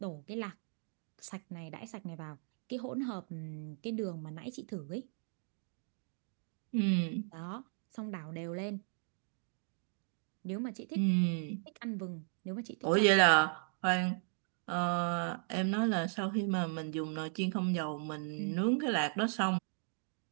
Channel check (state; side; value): silent; left; 53 dB below the other